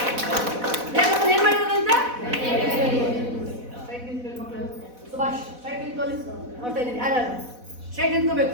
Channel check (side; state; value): left; late; 4.1 ms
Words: ದೇವ್ರು ಏನ್ ಮಾಡಿರೋದಂತೆ? ಸುಭಾಷ್ ಸ್ಟ್ರೈಟ್ ನಿಂತ್ಕೊಳ್ಳಿ. ನೋಡ್ತಾ ಇದ್ದೀನಿ ಯಾರು ಸ್ಟ್ರೈಟ್